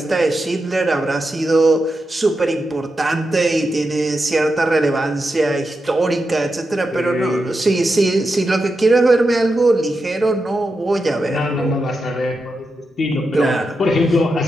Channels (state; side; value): normal; both; correlation 0.88